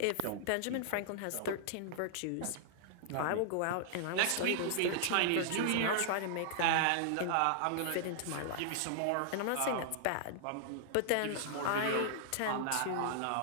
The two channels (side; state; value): both; different; correlation -0.01